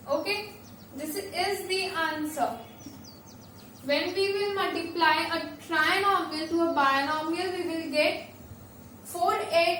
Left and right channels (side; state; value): both; identical; correlation 1.00